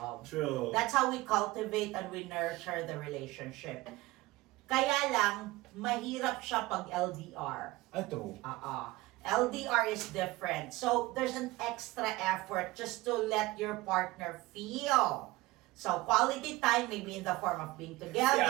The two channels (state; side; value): quieter; left; 19.8 dB